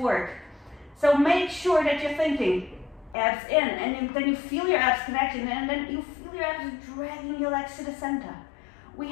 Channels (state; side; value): drops out; right; at 3.2 s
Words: So make sure that you're thinking abs in, and then you feel your abs connecting, and then you feel your abs dragging your legs to the center. We